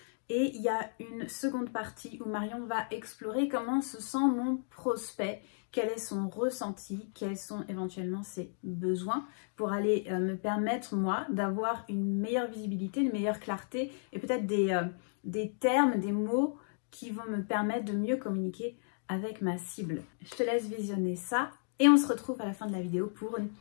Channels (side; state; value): right; silent; digital silence